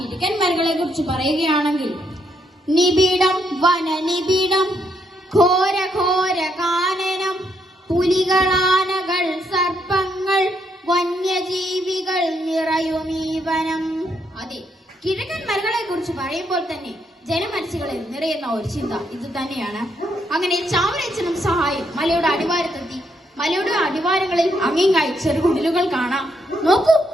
മലകളെ കുറിച്ച് പറയുകയാണെങ്കിൽ, നിബിഡം വനനിബിഡം, ഘോര ഘോര കാനനം, പുലികളാനകൾ സർപ്പങ്ങൾ വന്യജീവികൾ നിറയുമീ വനം. അതെ, കിഴക്കൻ മലകളെ കുറിച്ച് പറയുമ്പോൾ തന്നെ ജനമനസ്സുകളിൽ നിറയുന്ന ഒരു ചിന്ത ഇത് തന്നെയാണ്. അങ്ങനെ ചാവറയച്ചനും സഹായം മലയുടെ അടിവാരത്തെത്തി. മലയുടെ അടിവാരങ്ങളിൽ അങ്ങിങ്ങായി ചെറുകുടിലുകൾ കാണാം. നോക്കൂ,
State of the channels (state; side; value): normal; both; correlation 0.75